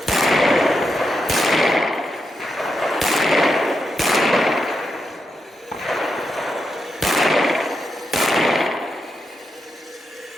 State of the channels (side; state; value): both; normal; correlation 0.85